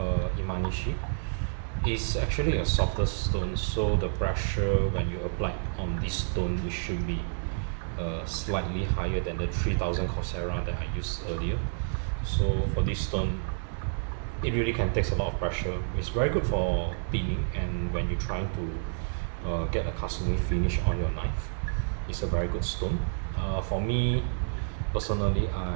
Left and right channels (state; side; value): silent; left; digital silence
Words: Imanishi. It's actually a softer stone, so the pressure when you apply on this stone, it should be slightly higher than the 3000 Chosera that I used earlier. So for this stone, it really can take a lot of pressure. It's very good for cleaning, and when you're trying to get a kasumi finish on your knife, it's a very good stone. For me, personally,